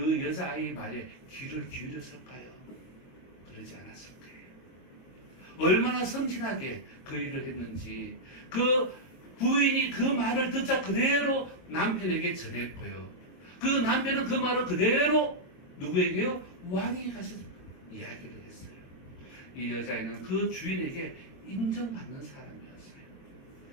여자아이의 말에 귀를 기울였을까요? 그러지 않았을 거예요. 얼마나 섬진하게 그 일을 했는지 그 부인이 그 말을 듣자 그대로 남편에게 전했고요. 그 남편은 그 말을 그대로 누구에게요? 왕에게 가서 이야기를 했어요. 이 여자애는 그 주인에게 인정받는 사람이었어요.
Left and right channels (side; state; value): right; late; 22 ms